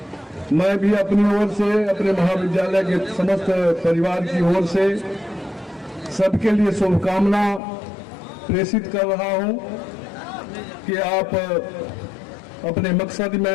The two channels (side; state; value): right; drops out; at 7.6 s